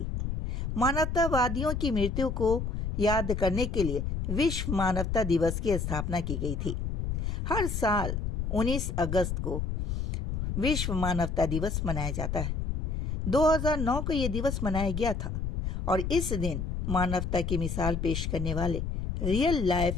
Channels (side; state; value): left; noise; rumble, 2 dB below the sound